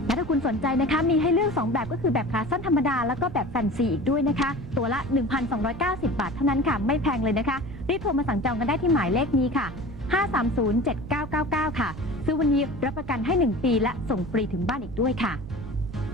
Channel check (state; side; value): noise; right; rumble, 13 dB below the sound